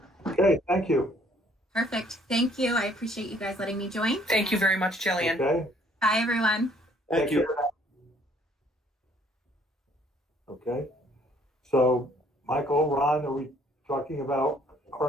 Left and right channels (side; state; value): both; normal; correlation 0.62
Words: Okay, thank you. Perfect. Thank you. I appreciate you guys letting me join. Thank you very much, Jillian. Okay. Bye, everyone. Thank you. Okay. So, Michael, Ron, are we talking about